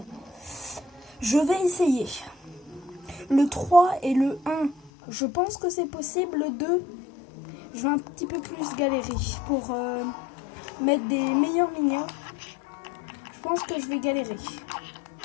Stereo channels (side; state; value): right; drops out; at 4.9 s